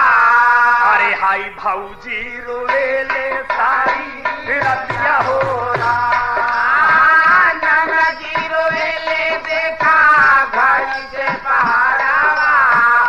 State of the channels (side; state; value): both; identical; correlation 1.00